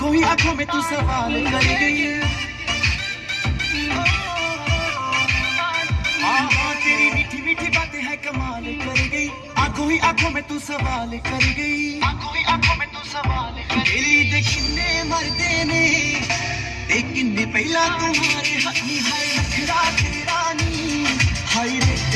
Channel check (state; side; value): identical; both; correlation 1.00